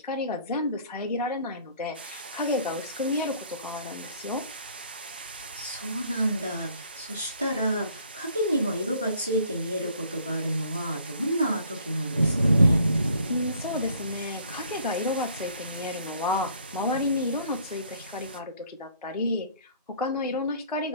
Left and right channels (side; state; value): both; inverted; correlation -0.58